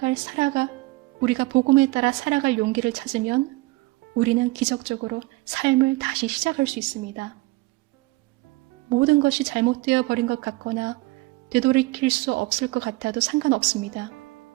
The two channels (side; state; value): left; quieter; 21.6 dB